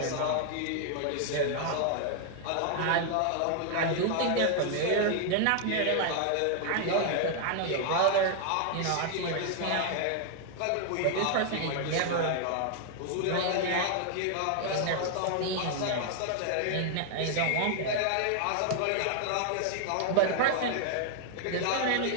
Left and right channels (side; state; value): both; different; correlation 0.00